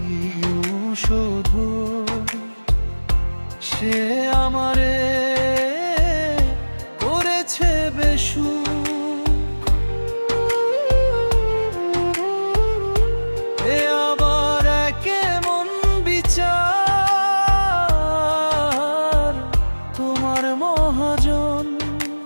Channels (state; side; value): inverted; both; correlation -1.00